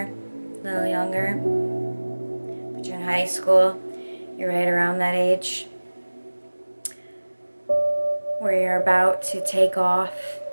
a little younger, but you're in high school, you're right around that age where you're about to take off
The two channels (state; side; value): inverted; both; correlation -1.00